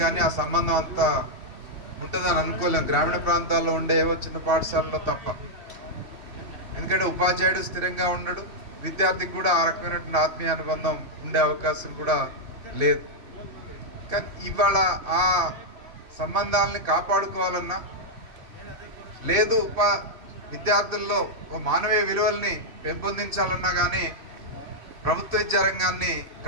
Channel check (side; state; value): left; late; 3.1 ms